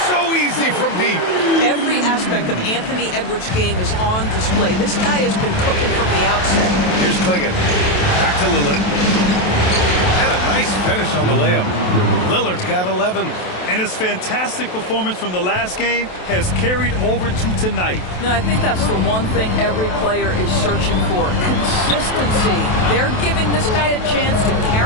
so easy from deep. Every aspect of Anthony Edwards' game is on display. This guy has been cooking from the outset. Here's Klingon. Back to Lillard. And a nice finish on the layup. Lillard's got 11. And his fantastic performance from the last game has carried over to tonight. No, I think that's the one thing every player is searching for. Consistency. They're giving this guy a chance to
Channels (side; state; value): right; late; 28 ms